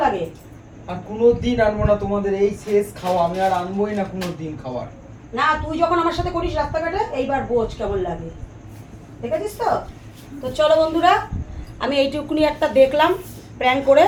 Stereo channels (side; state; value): both; identical; correlation 1.00